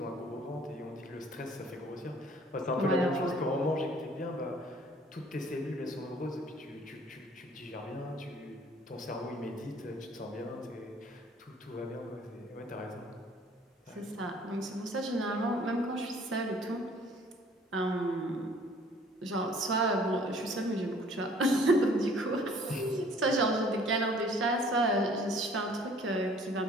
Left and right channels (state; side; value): normal; both; correlation 0.55